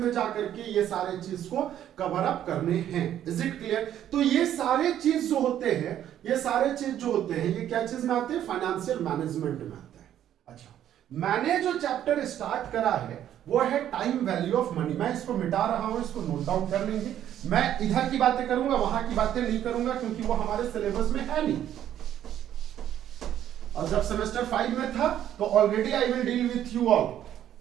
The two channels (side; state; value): left; quieter; 11.0 dB